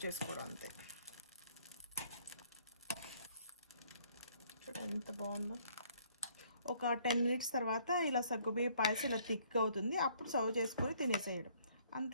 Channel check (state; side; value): inverted; both; correlation -0.62